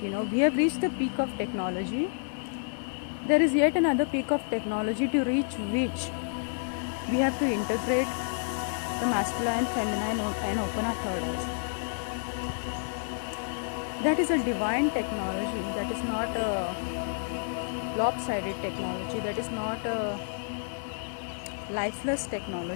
You know, we have reached the peak of technology. There is yet another peak of technology to reach which we have to integrate the masculine, feminine, and open our third eyes. That is a divine technology. That is not a lopsided technology. That is not a lifeless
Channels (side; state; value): right; silent; digital silence